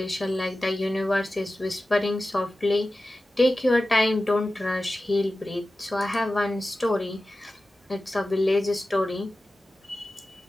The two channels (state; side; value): normal; both; correlation 0.94